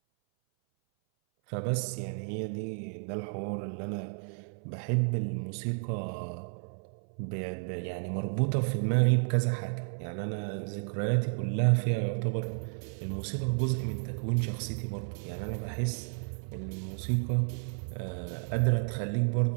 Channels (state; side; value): silent; left; 57 dB below the other